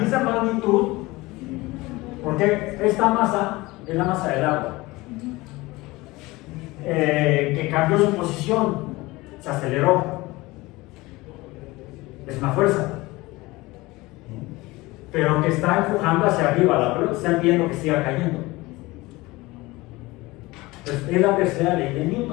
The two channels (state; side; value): quieter; right; 21.0 dB